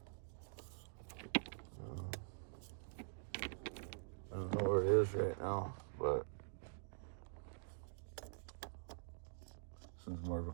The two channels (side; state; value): left; silent; digital silence